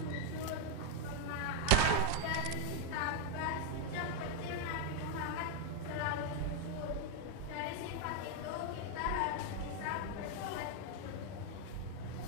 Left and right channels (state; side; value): different; both; correlation 0.01